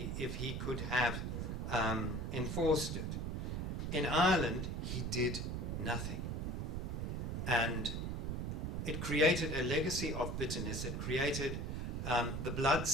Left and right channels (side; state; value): right; noise; rumble, 2 dB below the sound